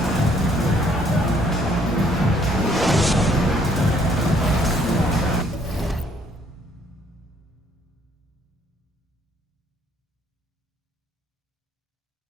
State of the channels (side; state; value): both; normal; correlation 0.64